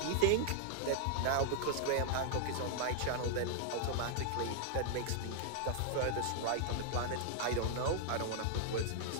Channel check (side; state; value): both; different; correlation -0.01